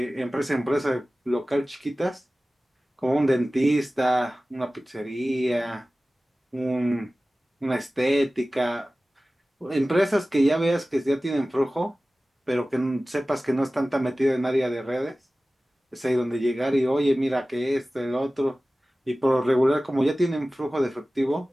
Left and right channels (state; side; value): normal; both; correlation 0.97